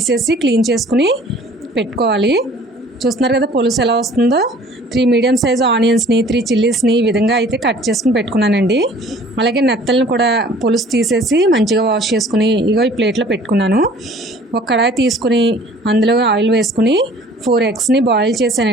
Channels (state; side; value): normal; both; correlation 0.51